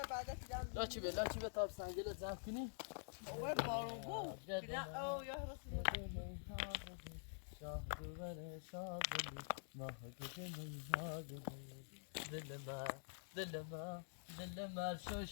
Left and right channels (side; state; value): right; silent; digital silence